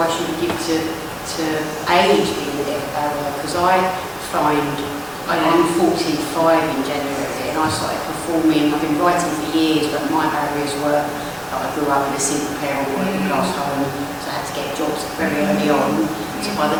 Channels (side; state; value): both; identical; correlation 1.00